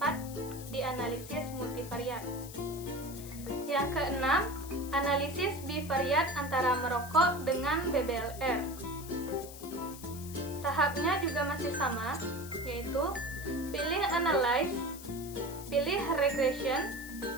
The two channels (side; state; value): left; noise; hiss, 14 dB below the sound